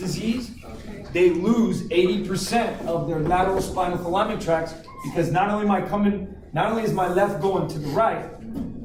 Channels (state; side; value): identical; both; correlation 1.00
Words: they lose 80% of their lateral spinal alignment tracts because not only is my left going to the right,